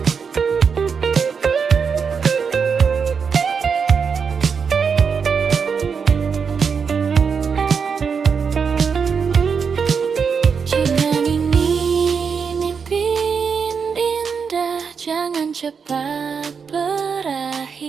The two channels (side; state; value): left; quieter; 6.1 dB